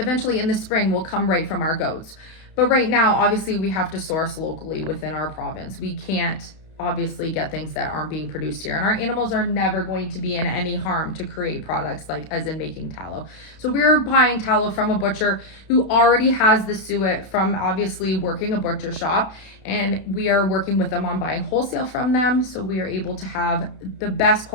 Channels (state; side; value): late; right; 32 ms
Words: in the spring will come right from our goats. But right now, obviously, we have to source locally within our province. We can't obviously get things that aren't being produced here, and our animals are never going to be in any harm to create products like as in making tallow. So we're buying tallow from a butcher who already has the suet from obviously working a butcher shop, and we are working with them on buying wholesale from them, so we are able to have the best